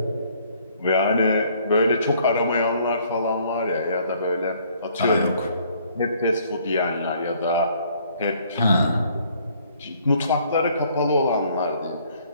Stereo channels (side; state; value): both; inverted; correlation -0.62